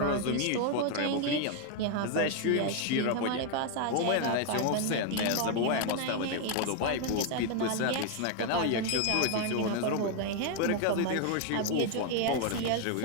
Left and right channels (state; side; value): different; both; correlation 0.01